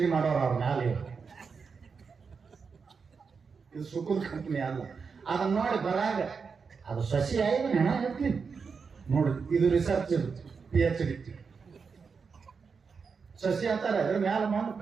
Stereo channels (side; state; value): left; quieter; 5.4 dB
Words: ಮಾಡೋರು ಅವ್ರ ಮ್ಯಾಲೆ. ಇವರು ಇದು ಸುಕುಲ್ ಕಂಪನಿ ಅಲ್ಲ. ಅದನ್ನ ನೋಡಿ ಬರಾಗ ಅದು ಸಸಿ ಆಯ್ತು ಹೆಣ ಹೇಳ್ತೀನಿ ನೋಡಿ. ಇದು ರಿಸರ್ಚ್, PhD ಸಸಿ ಅಂತಾರೆ. ಅದ್ರ ಮ್ಯಾಲ ಮಾಡಿ